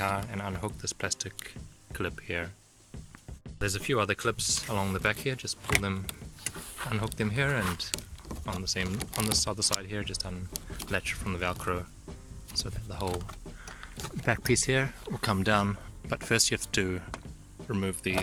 and unhook this plastic clip here. There's a few other clips along the back here, just pull them, unhook them here, and on this other side here just unlatch from the Velcro so that the whole back piece here will come down. But first you have to remove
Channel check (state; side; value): identical; both; correlation 1.00